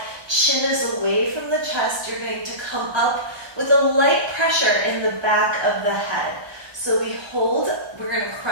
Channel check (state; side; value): late; left; 1.2 ms